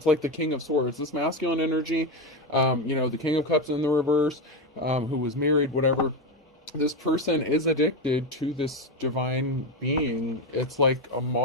like the King of Swords. This masculine energy, the King of Cups in the reverse, who was married, whatever. This person is addicted to this divine being. It's like a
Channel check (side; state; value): both; normal; correlation 0.13